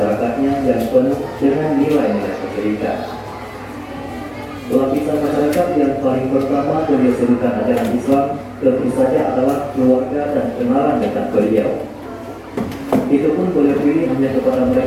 yang penuh dengan nilai-nilai kesyirikan. Lapisan masyarakat yang paling pertama beliau serukan ajaran Islam tentu saja adalah keluarga dan kenalan dekat beliau. Itu pun beliau pilih hanya kepada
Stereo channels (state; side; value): identical; both; correlation 1.00